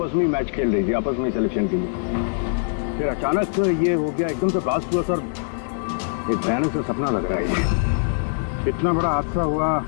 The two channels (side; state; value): right; silent; 59 dB below the other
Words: में ही मैच खेल रही थी, आपस में सिलेक्शन के लिए। फिर अचानक ये हो गया, एकदम से ब्लास्ट हुआ सर। एक भयानक सा सपना लग रहा है ये। इतना बड़ा हादसा हुआ,